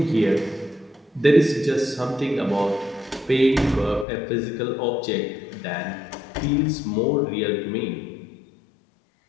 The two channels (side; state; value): right; drops out; at 4.0 s